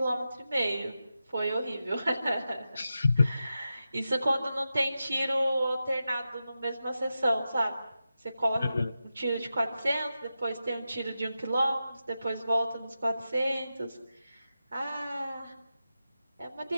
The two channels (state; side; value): inverted; both; correlation -0.91